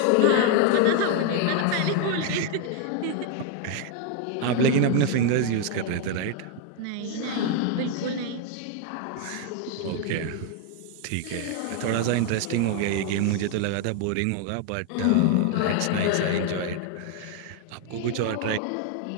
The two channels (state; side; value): different; both; correlation 0.01